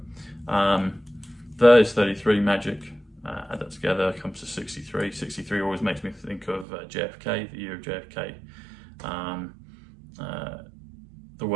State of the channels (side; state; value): left; drops out; at 6.7 s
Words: There is 33, magic. Add that together, comes to 63. 63 always makes me think of JFK, the year of JFK. The